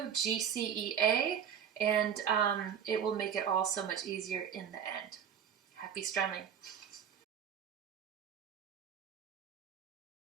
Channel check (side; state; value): left; quieter; 8.2 dB